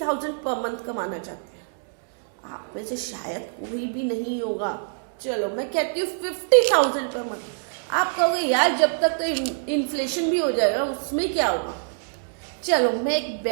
पर मंथ कमाना चाहते हैं? आप में से शायद कोई भी नहीं होगा। चलो मैं कहती हूँ 50,000 पर मंथ। आप कहोगे यार जब तक तो इन्फ्लेशन भी हो जाएगा, उसमें क्या होगा? चलो मैं एक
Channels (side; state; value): left; silent; digital silence